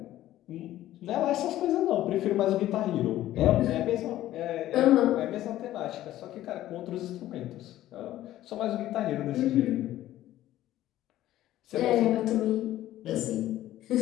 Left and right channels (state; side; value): quieter; right; 14.0 dB